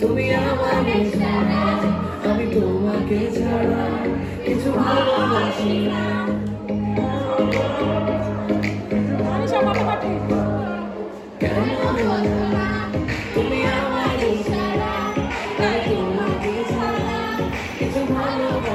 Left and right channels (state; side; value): identical; both; correlation 1.00